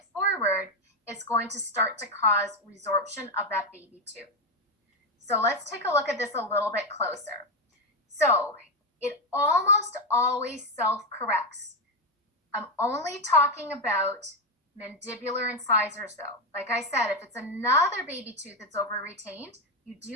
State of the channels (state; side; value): normal; both; correlation 0.08